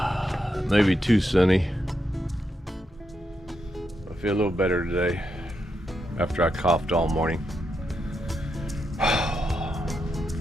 Maybe too sunny. I feel a little better today after I coughed all morning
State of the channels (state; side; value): normal; both; correlation 0.83